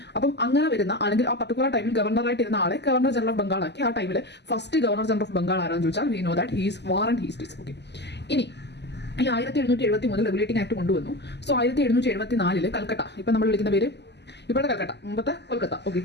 അപ്പം അങ്ങനെ വരുന്ന അല്ലെങ്കിൽ ആ പർട്ടിക്കുലർ ടൈമിൽ ഗവർണറായിട്ട് ഇരുന്ന ആളെ ഗവർണർ ജനറൽ ഓഫ് ബംഗാൾ ആക്കി. ആ ടൈമിൽ first governor general of Bengal ആരാന്ന് ചോദിച്ചാൽ we know that he's Warren Hastings. Okay, ഇനി ഈ 1773 റെഗുലേറ്റിംഗ് ആക്ട് കൊണ്ടുവന്നു. സോ 1774 കൽക്കട്ട, ഇപ്പം നമ്മൾ വിളിക്കുന്ന പേര് ഇപ്പോഴത്തെ കൽക്കട്ട, മുമ്പത്തെ കൊൽക്കത്ത, ഓക്കെ,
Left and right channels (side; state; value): right; late; 0.50 ms